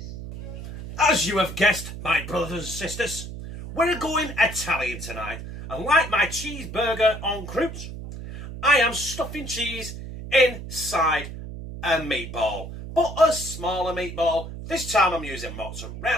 As you have guessed, my brothers and sisters, we're going Italian tonight, and like my cheeseburger en croûte, I am stuffing cheese inside a meatball, but a smaller meatball. This time I'm using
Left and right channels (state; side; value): noise; right; hum, 10 dB below the sound